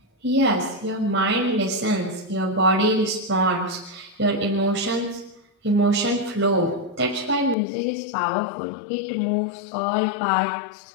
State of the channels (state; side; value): drops out; right; at 7.6 s